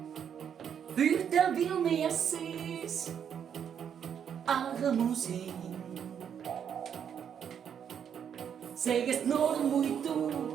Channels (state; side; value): quieter; left; 8.3 dB